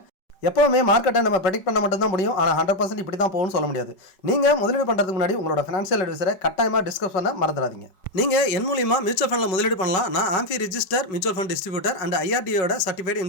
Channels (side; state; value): right; late; 5.4 ms